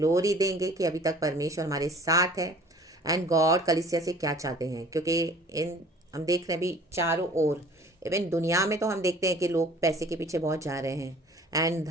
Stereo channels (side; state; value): both; normal; correlation 0.50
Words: देंगे कि अभी तक परमेश्वर हमारे साथ है एंड गॉड कलीसिया से क्या चाहते हैं, क्योंकि इन हम देख रहे हैं भी चारों ओर, इवन दुनिया में तो हम देखते हैं कि लोग पैसे के पीछे बहुत जा रहे हैं एंड